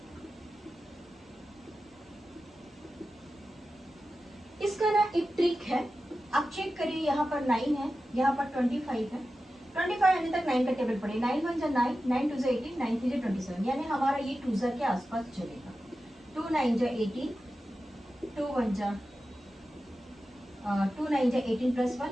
इसका ना एक ट्रिक है, आप चेक करिए। यहाँ पर 9 है, यहाँ पर 25 है। 25 आने तक 9 का टेबल पड़े। 9 1 जा 9, 9 2 जा 18, 9 3 जा 27, यानी हमारा ये 2 जा के आसपास चलेगा। 2 9 जा 18, 2 1 जा 2 9 जा 18 प्लस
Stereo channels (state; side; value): normal; both; correlation 0.93